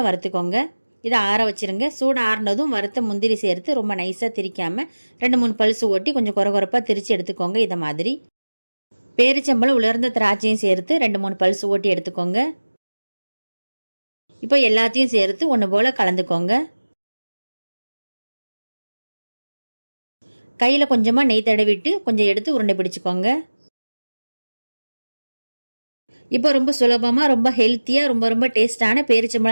வறுத்துக்கோங்க. இதை ஆற வச்சுருங்க. சூடு ஆறினதும் வறுத்த முந்திரி சேர்த்து ரொம்ப நைஸாக திரிக்காமல் 2-3 பல்ஸ் ஓட்டி கொஞ்சம் குறப்பாக திரித்து எடுத்துக்கோங்க. இதை மாதிரி பேரிச்சம்பழம் உலர்ந்த திராட்சையும் சேர்த்து 2-3 பல்ஸ் ஓட்டி எடுத்துக்கோங்க. இப்போ எல்லாத்தையும் சேர்த்து ஒன்று போல் கலந்துக்கோங்க. கையில் கொஞ்சமாக நெய் தடவிட்டு கொஞ்சம் எடுத்து உருண்டை பிடிச்சிக்கோங்க. இப்போ ரொம்ப சுலபமாக ரொம்ப ஹெல்த்தியாக ரொம்ப ரொம்ப டேஸ்டான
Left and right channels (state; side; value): inverted; both; correlation -1.00